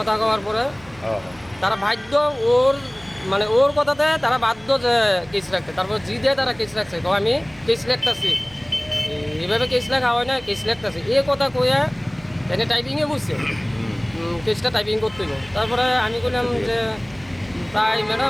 কওয়ার পরে তারা বাধ্য, ওর কথাতে তারা বাধ্য যে কেস রাখতে। তারপর জিদে তারা কেস রাখছে, তো আমি কেস রাখতেছি, এইভাবে কেস লেখা হয় না, কেস লিখতেছে এই কথা কইয়া এনে টাইপিংয়ে বুঝছে, কেসটা টাইপিং করতে হইব। তারপরে আমি কইলাম যে প্রায়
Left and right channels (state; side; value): noise; right; hum, 24 dB below the sound